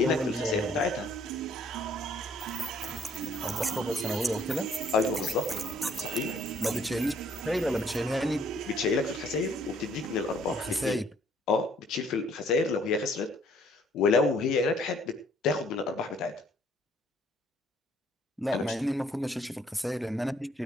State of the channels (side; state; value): both; normal; correlation 0.62